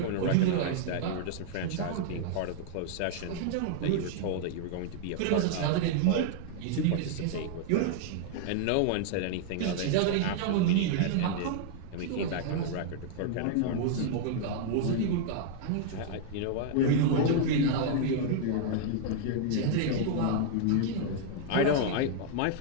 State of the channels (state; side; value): different; both; correlation -0.01